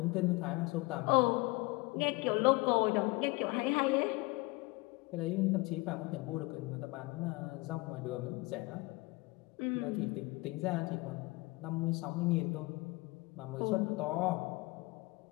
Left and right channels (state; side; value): quieter; right; 23.7 dB